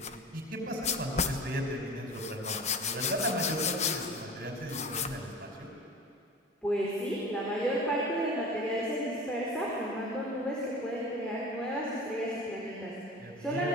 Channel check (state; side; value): normal; both; correlation 0.37